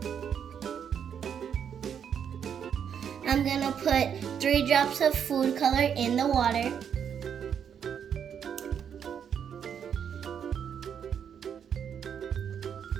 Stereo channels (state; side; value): quieter; left; 8.0 dB